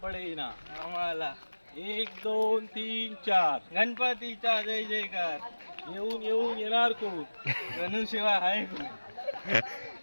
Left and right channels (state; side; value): inverted; both; correlation -1.00